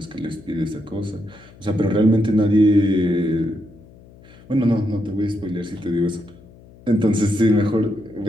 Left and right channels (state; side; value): noise; left; hum, 23 dB below the sound